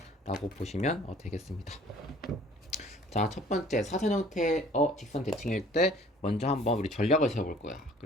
보시면 되겠습니다. 자, 첫 번째 사선 형태의 직선 대칭일 때 먼저 한번 우리 전략을 세워볼 거야.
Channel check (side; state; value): both; normal; correlation 0.52